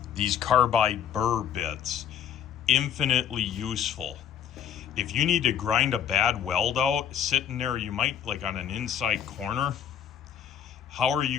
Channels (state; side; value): quieter; right; 9.1 dB